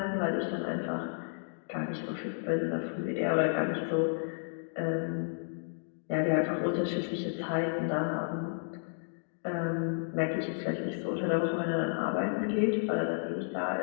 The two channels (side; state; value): right; silent; digital silence